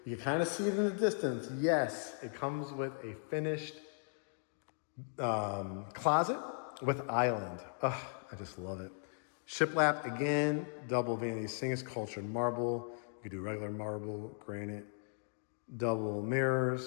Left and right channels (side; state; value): right; silent; digital silence